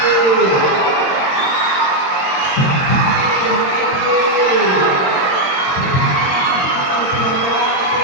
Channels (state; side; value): late; right; 22 ms